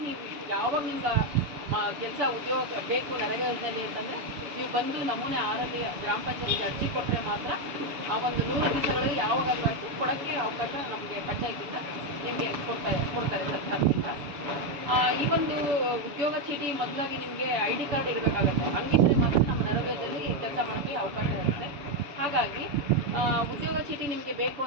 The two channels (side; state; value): left; late; 6.9 ms